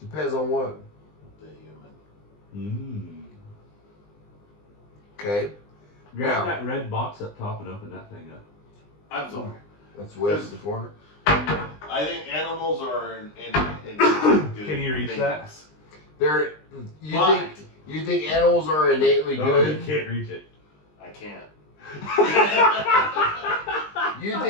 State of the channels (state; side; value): late; right; 20 ms